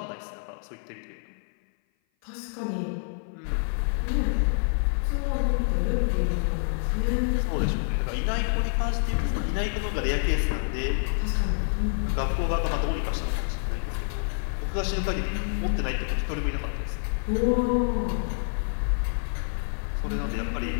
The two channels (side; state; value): right; silent; 56 dB below the other